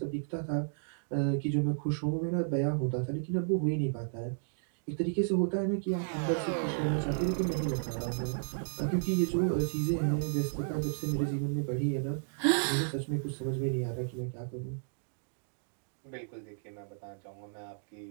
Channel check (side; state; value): left; silent; digital silence